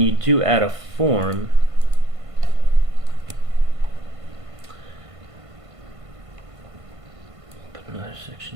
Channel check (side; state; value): left; late; 1.5 ms